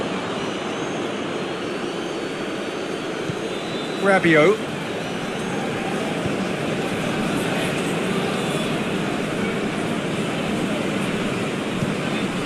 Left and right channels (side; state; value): both; identical; correlation 1.00